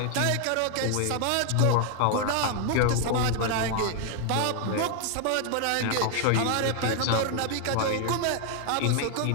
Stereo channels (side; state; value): both; different; correlation 0.00